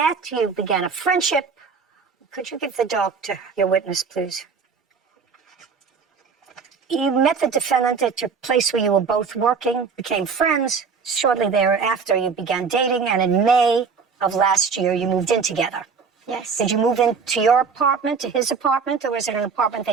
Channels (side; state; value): left; quieter; 5.5 dB